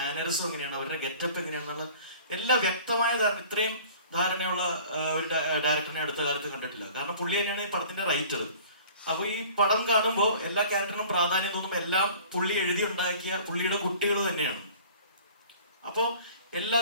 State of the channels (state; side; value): inverted; both; correlation -0.47